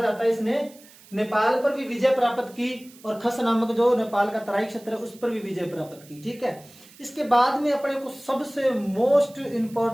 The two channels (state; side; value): noise; right; hiss, 23 dB below the sound